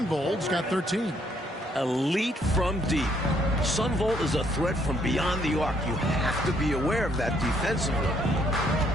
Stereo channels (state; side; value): normal; both; correlation 0.68